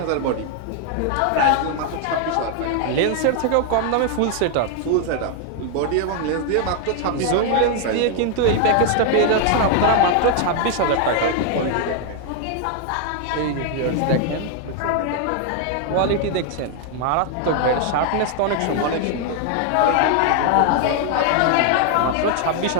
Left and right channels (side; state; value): both; different; correlation 0.00